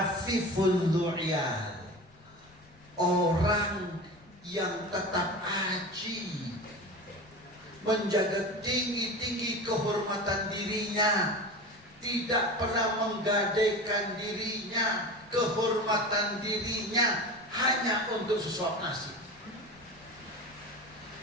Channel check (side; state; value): left; noise; rumble, 27 dB below the sound